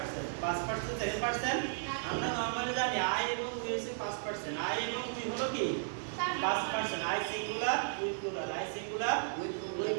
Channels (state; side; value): silent; left; digital silence